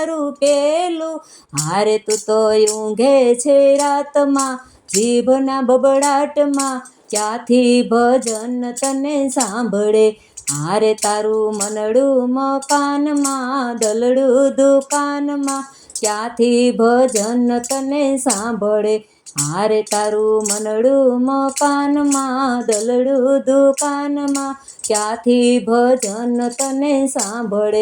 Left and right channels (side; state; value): both; identical; correlation 1.00